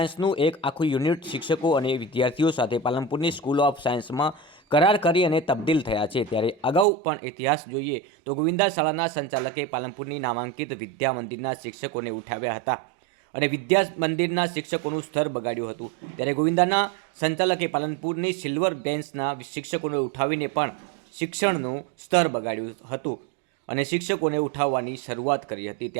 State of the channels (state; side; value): drops out; left; at 6.9 s